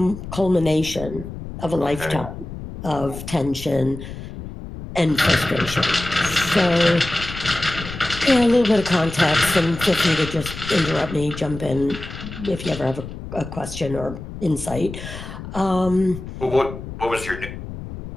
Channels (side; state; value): left; noise; rumble, 10 dB below the sound